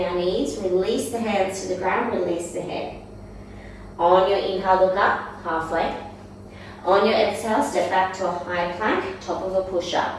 our knees, release the hands to the ground, release the head. On your inhale, look up, halfway. On your exhale, step back to a high plank, top of a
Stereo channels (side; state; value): both; identical; correlation 1.00